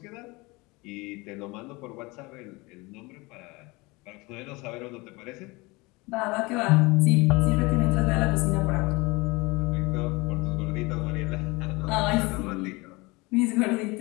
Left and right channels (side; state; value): right; quieter; 24.5 dB